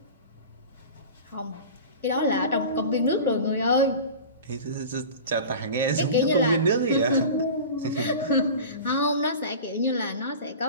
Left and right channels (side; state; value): both; inverted; correlation -0.34